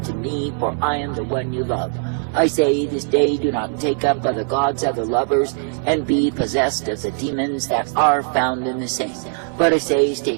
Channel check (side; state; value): left; silent; 56 dB below the other